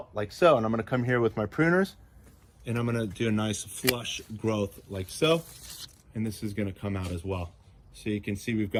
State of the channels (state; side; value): identical; both; correlation 1.00